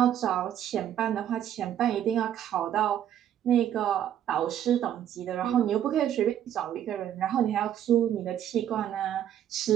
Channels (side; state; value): left; quieter; 10.5 dB